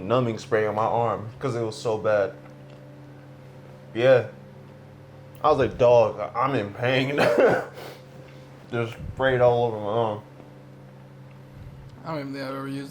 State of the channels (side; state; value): both; identical; correlation 1.00